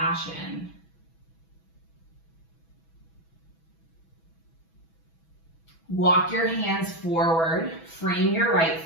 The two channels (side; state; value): right; late; 6.1 ms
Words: Walk your hands forward, frame your right